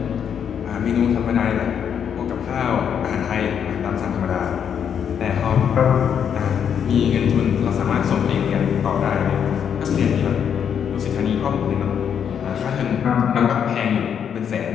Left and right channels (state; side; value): quieter; right; 8.1 dB